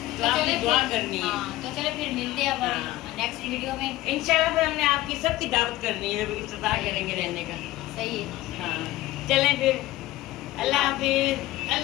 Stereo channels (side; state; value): right; quieter; 16.6 dB